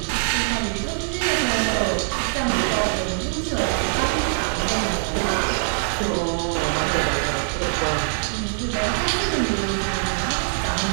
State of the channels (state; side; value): silent; left; digital silence